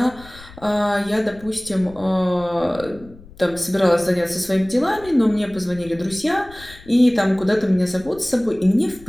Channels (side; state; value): left; noise; rumble, 20 dB below the sound